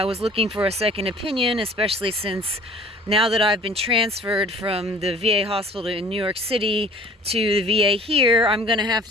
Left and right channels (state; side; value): normal; both; correlation 0.49